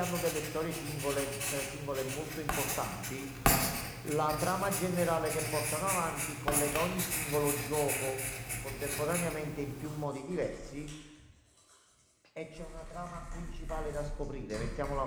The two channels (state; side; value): identical; both; correlation 1.00